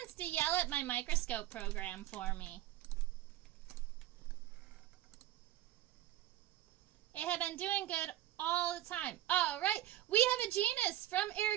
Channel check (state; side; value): quieter; left; 14.0 dB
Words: To yell at my microscope program for me. It had been doing good all the time. All right, we have a genus from